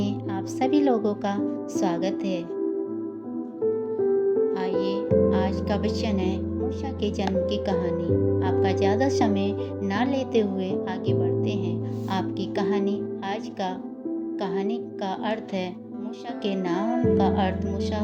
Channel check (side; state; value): both; identical; correlation 1.00